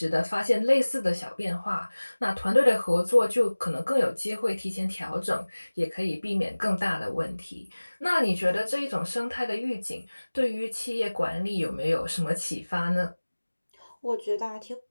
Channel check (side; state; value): both; inverted; correlation -1.00